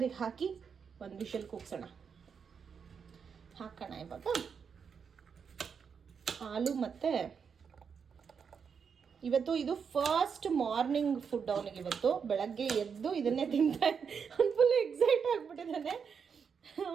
ಹಾಕಿ 1 ವಿಷಲ್ ಕೂಗ್ಸೋಣ. ಹಾಕೋಣ ಇವಾಗ ಆಲೂ. ಮತ್ತು ಇವತ್ತು ಇದು ಫಸ್ಟ್ ಮಾರ್ನಿಂಗ್ ಫುಡ್ ಅವನಿಗೆ. ಇವತ್ತು ಬೆಳಗ್ಗೆ ಎದ್ದು ಇದನ್ನೇ ತಿಂತಾ, ಅವ್ನು ಫುಲ್ ಎಕ್ಸೈಟ್ ಆಗಿಬಿಟ್ಟಿದ್ದಾನೆ.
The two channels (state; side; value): quieter; left; 6.5 dB